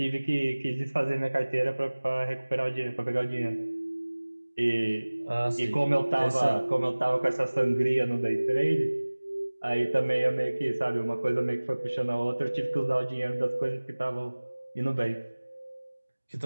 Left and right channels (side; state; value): both; inverted; correlation -1.00